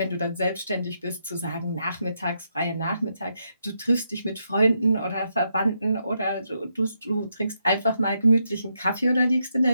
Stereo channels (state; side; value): inverted; both; correlation -0.81